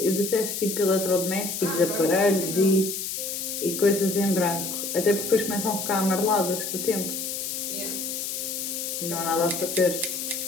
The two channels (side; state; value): left; noise; hiss, 4 dB below the sound